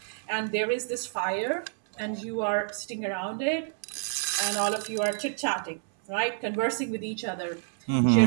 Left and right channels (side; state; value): left; silent; 59 dB below the other